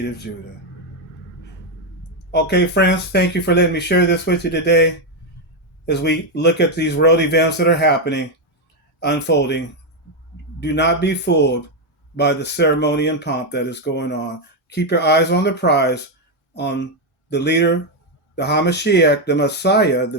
of Judah. Okay, friends, thank you for letting me share this with you today as we look at these world events that are happening, unfolding. Do not be fooled by the ceremony and pomp that is going on. Keep your eyes on the prize, on the leader, the Hamashiach, the Messiah,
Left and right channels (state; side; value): normal; both; correlation 0.04